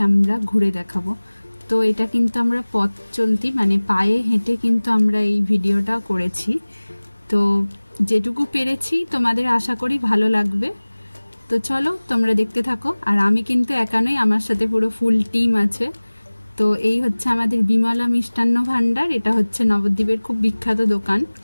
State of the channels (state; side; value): inverted; both; correlation -1.00